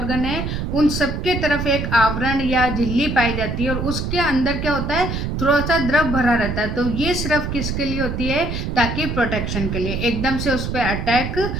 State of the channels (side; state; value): right; noise; rumble, 3 dB below the sound